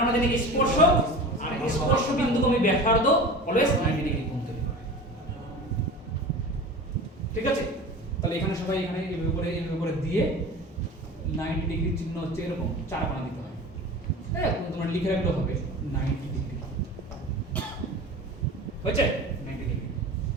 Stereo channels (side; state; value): both; normal; correlation 0.34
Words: আমরা জানি স্পর্শ আর স্পর্শ বিন্দুকে আমি ব্যাসার্ধ অলওয়েজ 90 ডিগ্রি কোণ তৈরি করে। ঠিক আছে? তাহলে এখানে সবাই এখানে এইভাবে করে দিয়ে 90 ডিগ্রি চিহ্ন হচ্ছে এরকম চার কোণা দিতে হয়। হ্যাঁ, তোমরা লিখে রাখলে হবে 90 ডিগ্রি। হয়েছে? 90 ডিগ্রি।